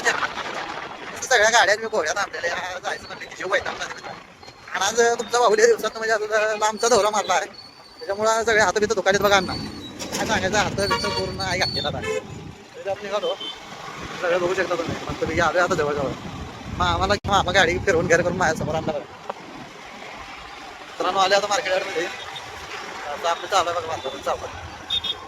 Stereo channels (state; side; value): identical; both; correlation 1.00